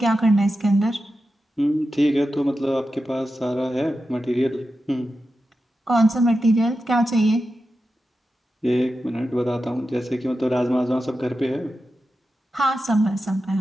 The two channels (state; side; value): normal; both; correlation 0.91